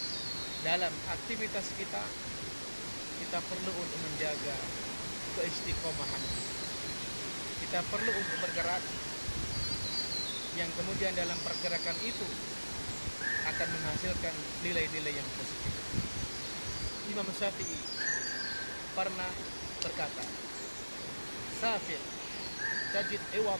dalam aktivitas kita perlu untuk menjaga keistiqomahan. Kita perlu untuk bergerak yang kemudian dalam pergerakan itu akan menghasilkan nilai-nilai yang positif. Imam Syafi'i pernah berkata, "Safir tajid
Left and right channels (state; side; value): inverted; both; correlation -1.00